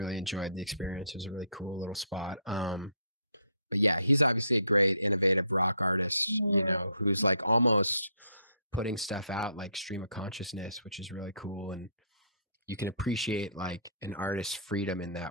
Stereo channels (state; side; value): inverted; both; correlation -0.64